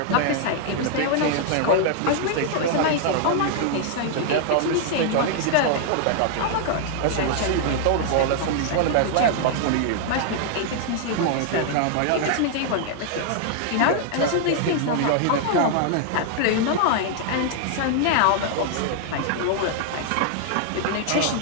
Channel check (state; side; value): different; both; correlation 0.00